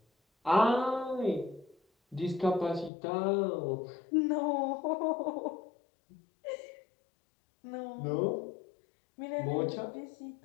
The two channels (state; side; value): drops out; right; at 2.9 s